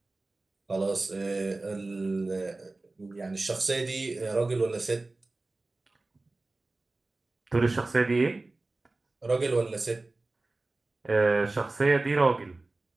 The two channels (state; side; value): quieter; left; 3.2 dB